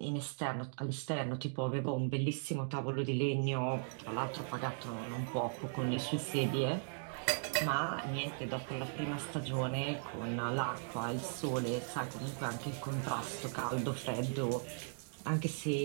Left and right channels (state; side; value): silent; left; digital silence